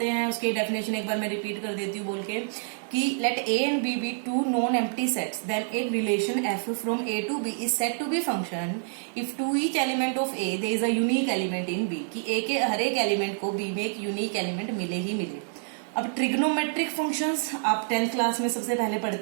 हैं उसकी डेफिनेशन एक बार मैं रिपीट कर देती हूँ बोल के कि let A and B be two non empty sets, then एक relation F from A to B is said to be function if to each element of A there is a unique element in B, कि A के हर एक element को B में एक unique element मिले ही मिले। अब ट्रिग्नोमेट्रिक फंक्शंस आप 10th क्लास में सबसे पहले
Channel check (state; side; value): silent; left; digital silence